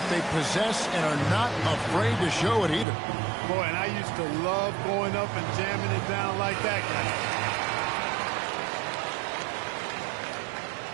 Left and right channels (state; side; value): drops out; left; at 2.9 s